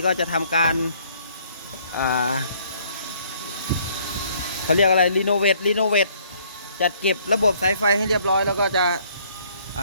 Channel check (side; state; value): both; inverted; correlation -0.63